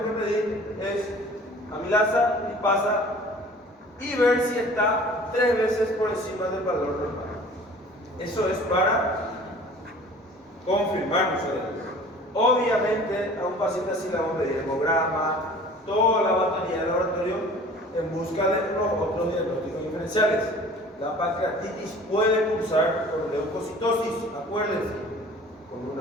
que pedir es amilasa, lipasa y ver si está 3 veces por encima del valor normal. Eso es para confirmar nosotros. Obviamente a un paciente así le vamos a pedir hemograma, toda la batería del laboratorio en busca de los otros diagnósticos diferenciales. La pancreatitis puede cursar con leucocitosis, acuérdense, con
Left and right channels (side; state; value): both; normal; correlation 0.47